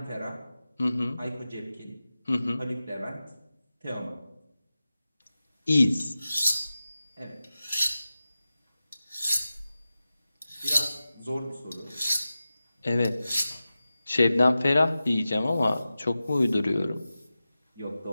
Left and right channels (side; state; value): both; inverted; correlation -0.94